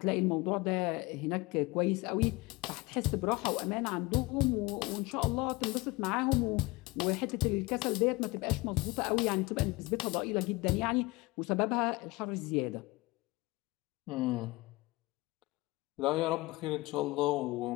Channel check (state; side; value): quieter; right; 22.7 dB